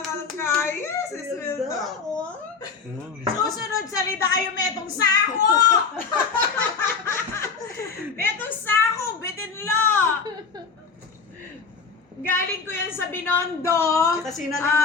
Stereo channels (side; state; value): right; quieter; 5.3 dB